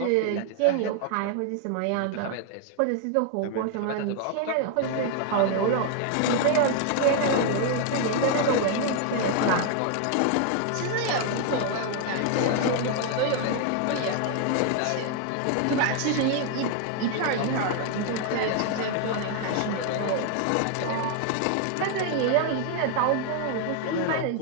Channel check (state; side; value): different; both; correlation 0.00